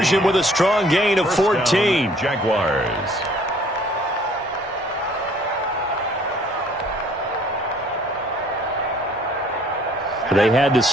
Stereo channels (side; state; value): both; normal; correlation 0.58